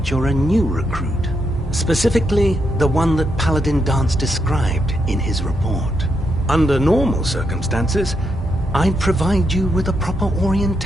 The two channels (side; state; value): both; normal; correlation 0.80